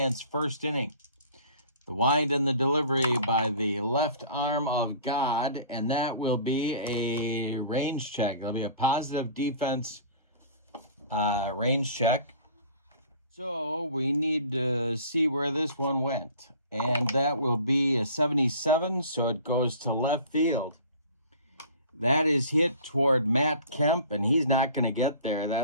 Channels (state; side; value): inverted; both; correlation -0.45